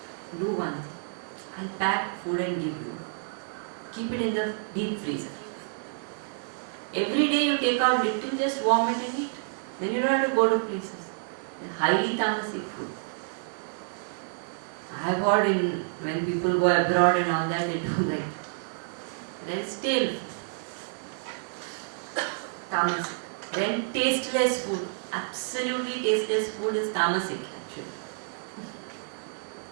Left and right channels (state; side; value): silent; left; digital silence